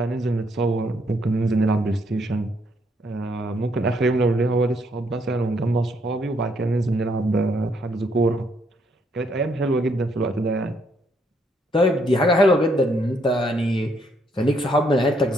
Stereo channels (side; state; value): both; normal; correlation 0.72